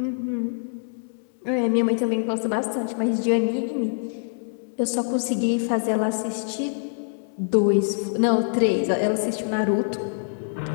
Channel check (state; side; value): silent; right; digital silence